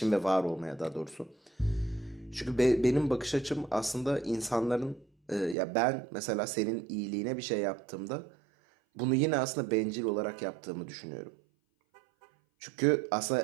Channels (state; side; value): drops out; left; at 5.6 s